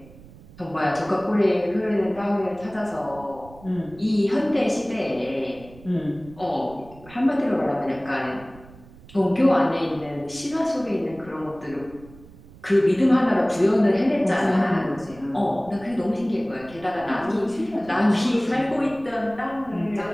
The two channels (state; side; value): noise; right; rumble, 21 dB below the sound